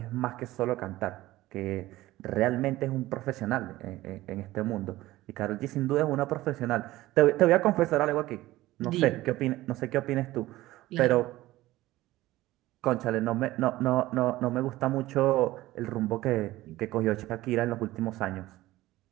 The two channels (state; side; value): quieter; left; 17.0 dB